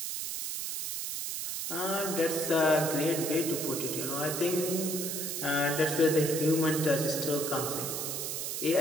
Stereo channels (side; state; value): right; noise; hiss, 3 dB below the sound